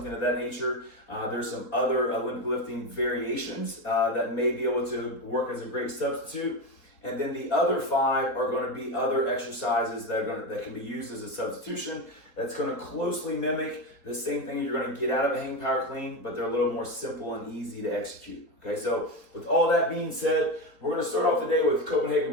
of that nature, there's some other Olympic lifting variations that may be able to work as a great substitute. And then the other 5 are going to be other exercises that can be used as a substitution. That's going to closely mimic the same thing you're going to get out of a hang power clean, but they're a little more simple and easy to execute. Okay, so with all that being said, we're going to start off the day with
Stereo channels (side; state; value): right; late; 4.4 ms